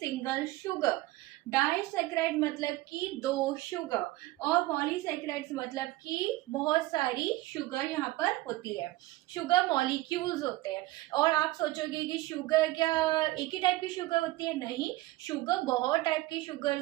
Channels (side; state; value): left; quieter; 18.1 dB